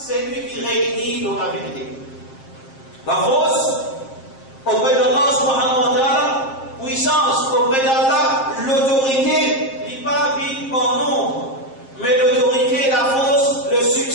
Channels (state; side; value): late; right; 7.5 ms